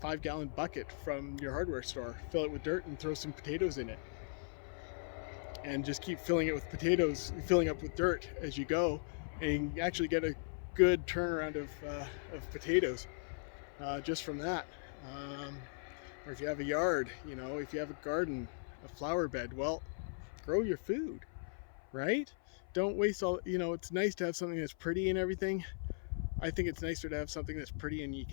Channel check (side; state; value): right; silent; 52 dB below the other